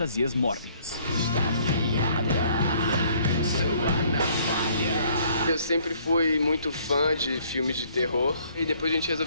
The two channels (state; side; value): inverted; both; correlation -0.62